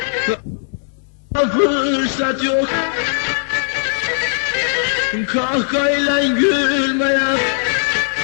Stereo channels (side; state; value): right; silent; digital silence